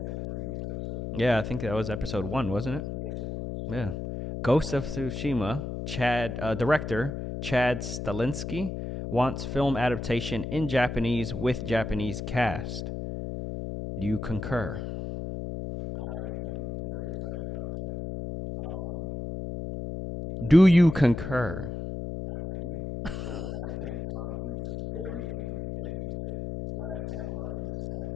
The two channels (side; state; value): left; noise; hum, 5 dB below the sound